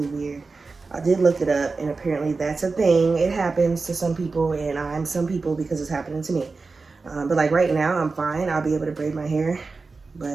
weird. I did look it up, and apparently that's a thing. It happens to some people, and I'm some people because it's happening to me. But like right now, I'm fine. I'll be able to braid my hair.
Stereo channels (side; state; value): left; quieter; 4.1 dB